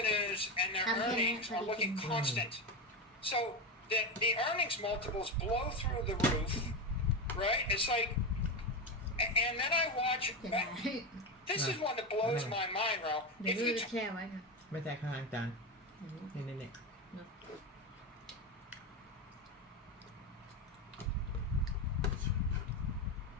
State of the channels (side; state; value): both; normal; correlation 0.16